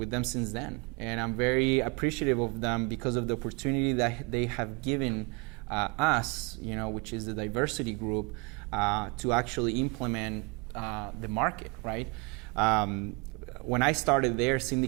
them since then. And I'm very appreciative of them because of the opportunity that they have given us, which is the diversity group, to actually implement the market, right? When I started there, Cindy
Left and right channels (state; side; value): quieter; left; 30.6 dB